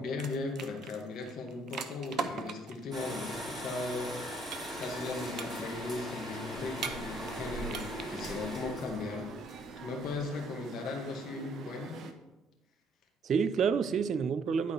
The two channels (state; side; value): normal; both; correlation 0.65